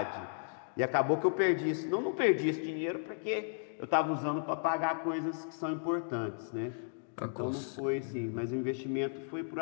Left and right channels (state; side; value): silent; right; digital silence